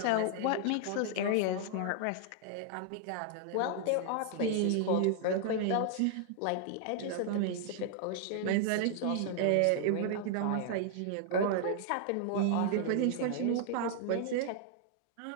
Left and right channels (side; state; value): both; different; correlation -0.01